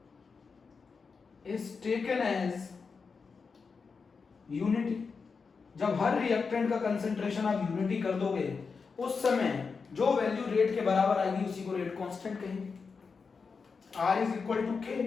is taken as unity। जब हर रिएक्टेंट का कंसंट्रेशन आप यूनिटी कर दोगे, उस समय जो वैल्यू रेट के बराबर आएगी उसी को रेट कांस्टेंट कहेंगे। R is equal to K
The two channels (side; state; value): right; quieter; 5.1 dB